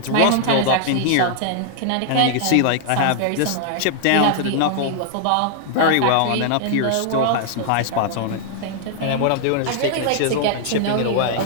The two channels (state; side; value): different; both; correlation 0.00